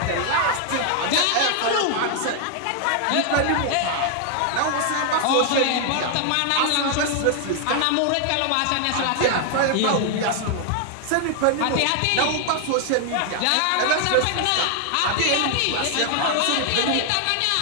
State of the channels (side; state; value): both; different; correlation 0.00